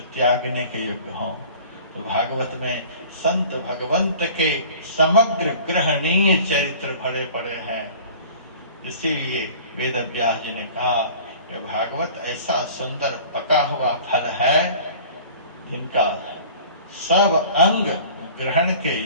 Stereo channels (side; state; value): both; inverted; correlation -0.45